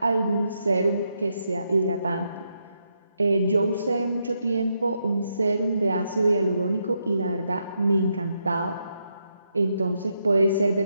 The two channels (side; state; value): both; inverted; correlation -0.81